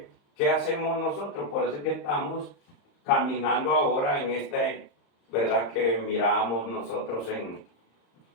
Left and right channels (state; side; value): late; right; 35 ms